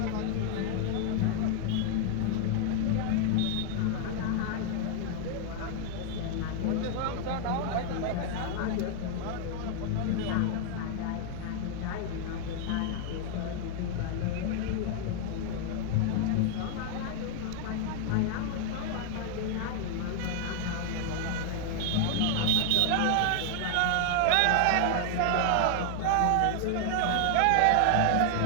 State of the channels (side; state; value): both; different; correlation 0.00